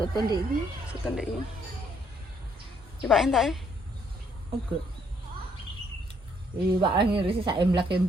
ndek iki. Soto ndek iki. Coba entak e. Oke. Pak ngirisi sak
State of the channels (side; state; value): both; normal; correlation 0.69